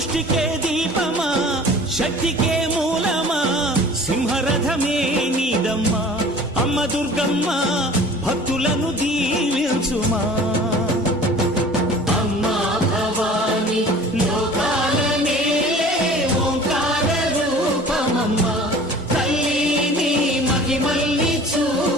సృష్టికే దీపమా శక్తికే మూలమా సింహరథమే నీదమ్మా అమ్మ దుర్గమ్మ భక్తులను దీవించుమా అమ్మా భవాని లోకాల నేలే ఓంకార రూపమమ్మా తల్లిని మహిమల్ని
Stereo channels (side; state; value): both; normal; correlation 0.45